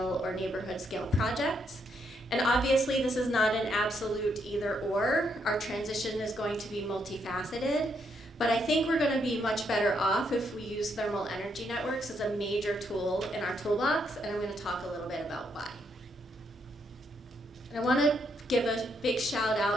or neighborhood scale projects. And obviously this is not an absolute either or. Our transition is going to be multifaceted, but I think we're going to be much better off if we use thermal energy networks as a major tool in our toolbox, and I'm going to talk a little bit about why. And I want to give a big shout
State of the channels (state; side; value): normal; both; correlation 0.76